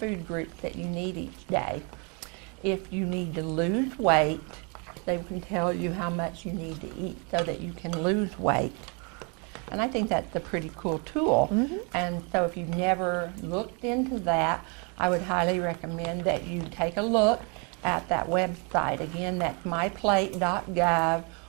groups that you need each day. If you need to lose weight, they can tell you how much you need to eat so that you can lose weight. And I think that's a pretty cool tool. And so if you've never looked into that, I would highly recommend that you take a look at that website. Again, that's myplate.gov,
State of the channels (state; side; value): quieter; left; 33.9 dB